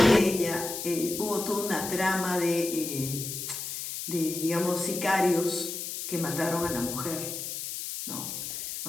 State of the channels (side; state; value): left; noise; hiss, 6 dB below the sound